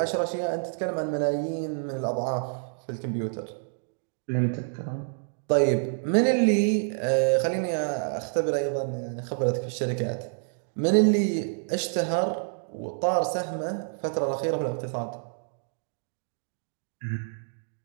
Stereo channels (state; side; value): silent; left; digital silence